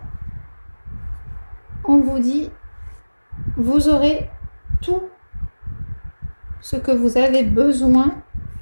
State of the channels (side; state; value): both; inverted; correlation -1.00